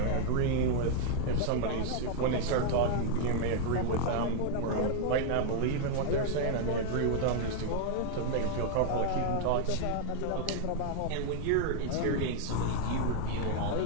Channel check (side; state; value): both; different; correlation 0.00